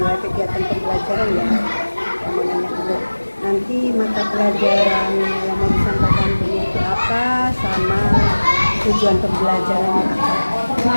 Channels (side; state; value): both; inverted; correlation -1.00